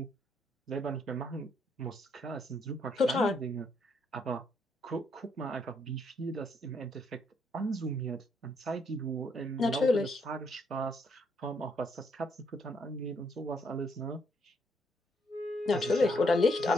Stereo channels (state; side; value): normal; both; correlation 0.73